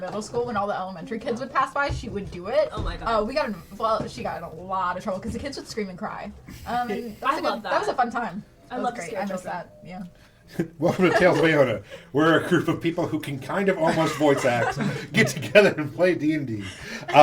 school, when all the elementary kids would pass by, she would do it. Oh my god. She got in a lot of trouble because the kids would scream and cry. And I love That was a that. fun time. I That love was to great. scare I miss children. that. Yeah. Welcome to Tales of Iona. We're a group of people who can kind of almost voice act, get together and play D&D.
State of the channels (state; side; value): identical; both; correlation 1.00